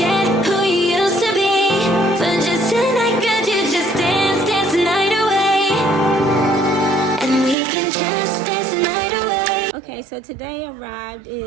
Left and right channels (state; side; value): drops out; left; at 7.6 s